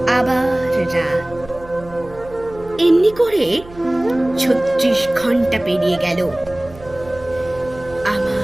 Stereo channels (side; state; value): right; noise; hum, 19 dB below the sound